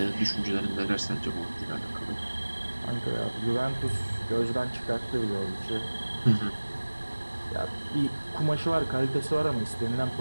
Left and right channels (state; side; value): inverted; both; correlation -1.00